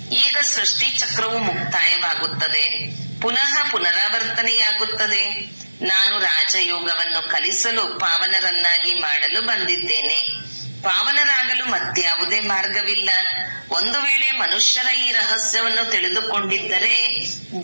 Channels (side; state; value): both; inverted; correlation -1.00